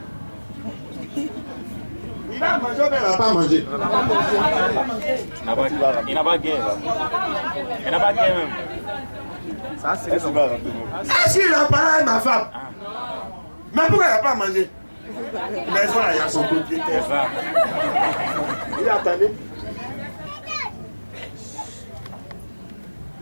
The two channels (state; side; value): inverted; both; correlation -1.00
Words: Il a mangé ou bien il n'a pas mangé? Il n'a pas gagné. Il n'a pas gagné même. Ça, c'est le savoir. Est-ce qu'il a parlé avec ma femme? Mais pourquoi il n'a pas mangé? Mais ça, il y a son propriétaire. Il attendait.